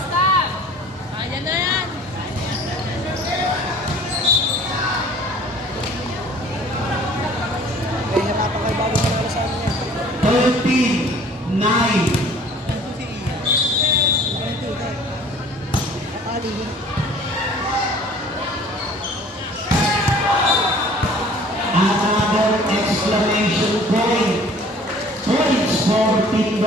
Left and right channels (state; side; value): normal; both; correlation 0.50